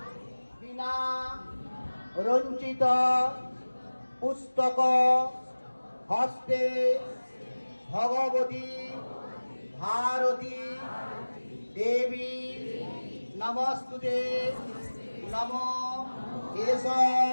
বিনা রঞ্চিত পুস্তক হস্তে ভগবতী ভারতী দেবী নমস্তুতে নম এষ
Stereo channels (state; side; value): inverted; both; correlation -1.00